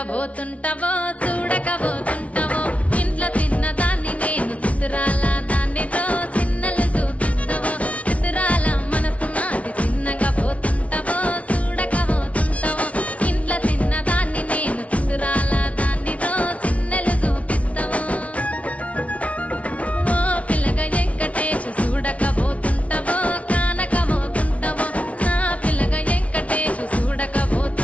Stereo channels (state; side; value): late; right; 0.065 ms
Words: పోతుంటావో చూడకపోతుంటావో ఇంట్లో చిన్నదాన్ని నేను చిత్రాల దానితో చిన్నలు చూపిస్తావో చిత్రాల మనసు నాది చిన్నగా పోతుంటావో చూడకపోతుంటావో ఇంట్లో చిన్నదాన్ని నేను చిత్రాల దానితో చిన్నలు చూపిస్తావో ఓ పిల్లగా వెంకటేశు చూడకపోతుంటావో కానకపోతుంటావో నా పిల్లగా వెంకటేశు